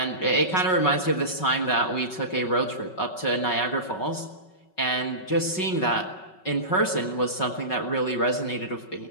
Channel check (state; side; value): late; right; 5.4 ms